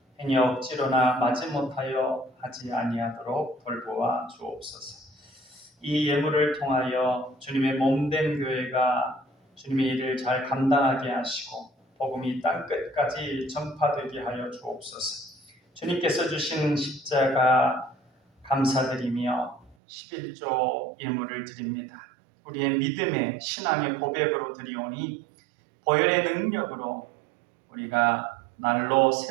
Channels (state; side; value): drops out; left; at 19.8 s